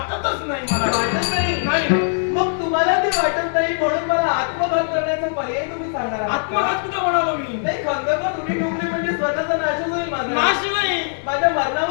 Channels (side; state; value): right; silent; 65 dB below the other